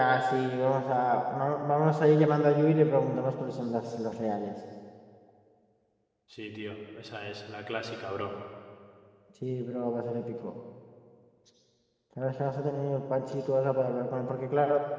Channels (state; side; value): identical; both; correlation 1.00